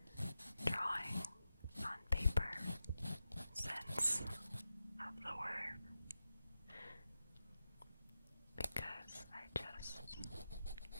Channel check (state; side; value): inverted; both; correlation -0.91